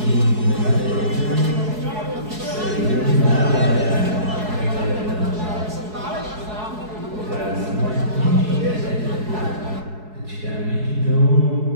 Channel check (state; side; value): late; left; 4.7 ms